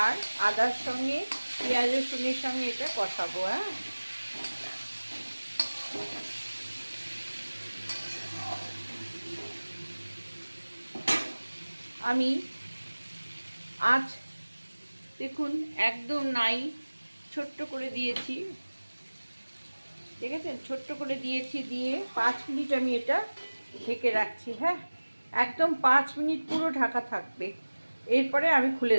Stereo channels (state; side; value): inverted; both; correlation -1.00